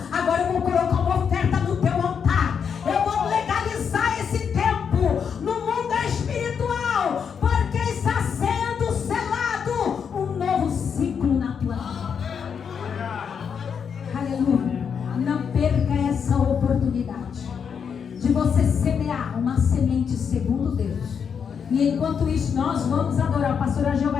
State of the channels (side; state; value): right; quieter; 6.9 dB